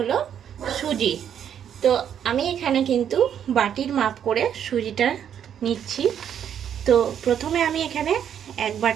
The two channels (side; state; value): left; quieter; 9.1 dB